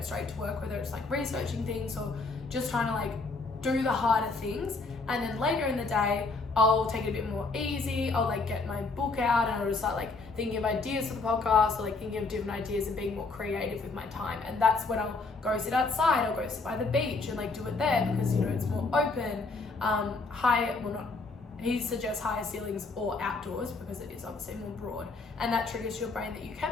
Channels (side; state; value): right; quieter; 3.9 dB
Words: straight to work, whether it's like researching things or just trying to like do the harder things. And then later in the day, I'll take it a bit more easy. I'll like get my book out and I'll just start like thinking of ideas for the podcast or like thinking of different ideas and being more creative with my time. And that's when I'll go sit outside, I'll go sit by the beach and like do it there because, you know, it's more open. He suggests higher ceilings or outdoors because it is obviously more broad. And that triggers your brain that you